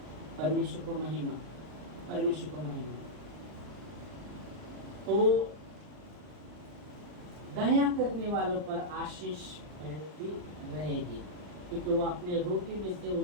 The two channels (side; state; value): left; late; 39 ms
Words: परमेश्वर को महिमा, परमेश्वर को महिमा। तो दया करने वालों पर आशीष फैलती रहेगी, क्योंकि वो अपने रोटी में से